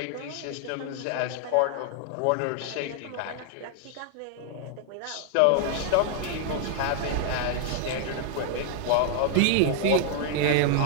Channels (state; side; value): different; both; correlation 0.00